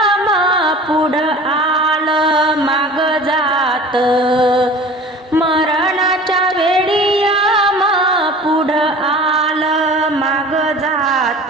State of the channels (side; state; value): both; normal; correlation 0.41